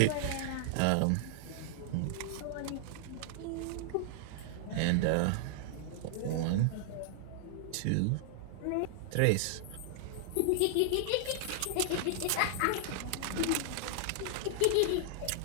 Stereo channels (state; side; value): different; both; correlation -0.01